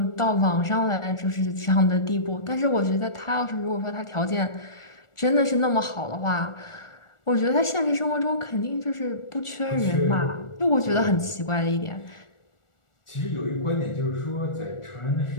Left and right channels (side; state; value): right; late; 1.4 ms